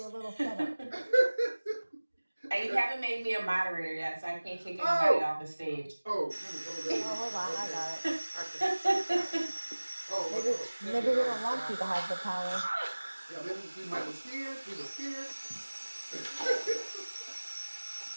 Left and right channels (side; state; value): both; inverted; correlation -1.00